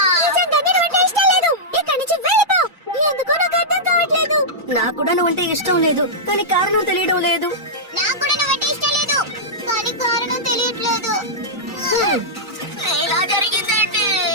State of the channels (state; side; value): normal; both; correlation -0.11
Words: నిజంగానే నువ్వంటే ఇష్టం లేదు. ఇక్కడి నుంచి వెళ్ళిపో. ఎందుకో నాకు అర్థం కావట్లేదు. నాకు కూడా నువ్వంటే ఇష్టం లేదు, కానీ కారణం తెలియడం లేదు.